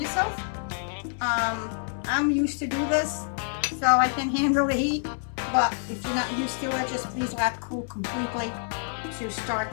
I'm used to do this, so I can handle the heat. But if you're not used to it, just please let it cool completely to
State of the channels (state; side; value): silent; right; 59 dB below the other